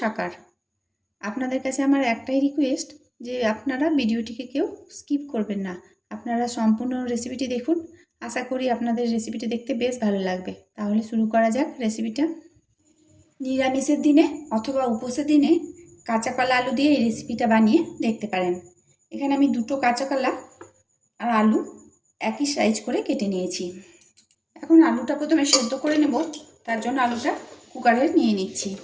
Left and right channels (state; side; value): identical; both; correlation 1.00